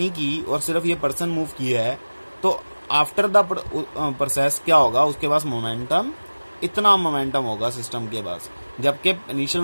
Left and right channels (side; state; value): both; inverted; correlation -1.00